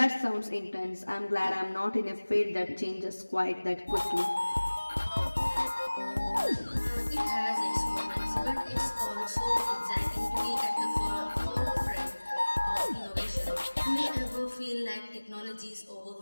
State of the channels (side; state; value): both; inverted; correlation -1.00